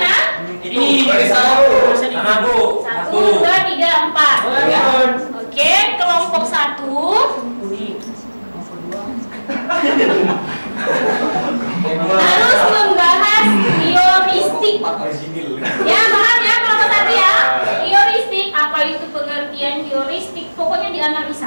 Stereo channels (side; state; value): both; inverted; correlation -1.00